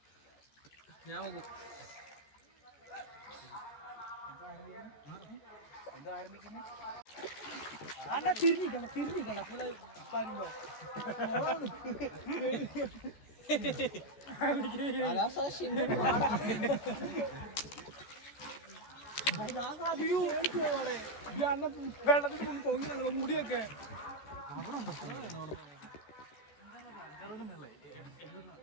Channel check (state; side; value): late; right; 14 ms